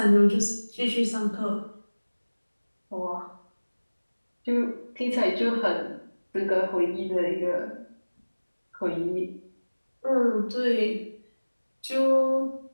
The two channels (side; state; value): both; inverted; correlation -1.00